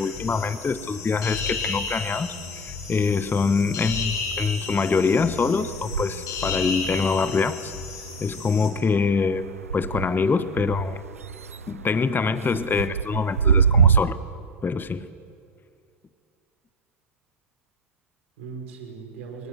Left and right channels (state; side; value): normal; both; correlation 0.33